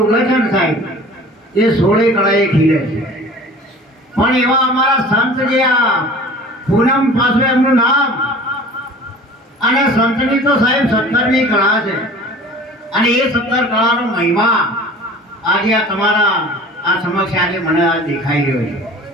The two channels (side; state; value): both; normal; correlation 0.43